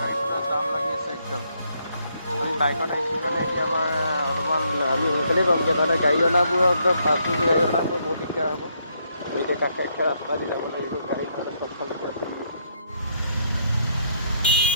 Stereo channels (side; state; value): both; inverted; correlation -0.73